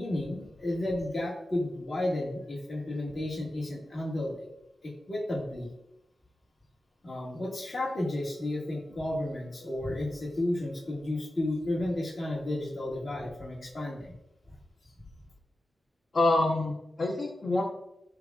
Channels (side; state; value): both; normal; correlation 0.92